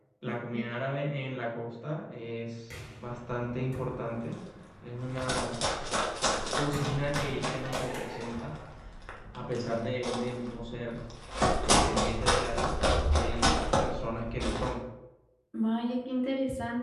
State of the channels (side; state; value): both; identical; correlation 1.00